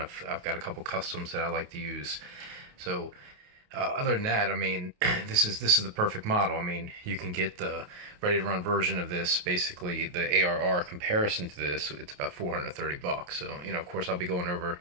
I've got a couple customs that I like to use. So other than that, I mean, this is the perfect model. I mean, you can get the ready to run version of this, basically the ARR comparison to this. It's about $430. So of course, I'll be going over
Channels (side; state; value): left; late; 28 ms